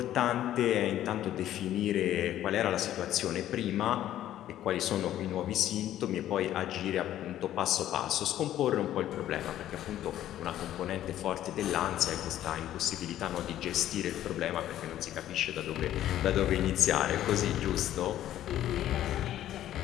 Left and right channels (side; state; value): right; quieter; 12.4 dB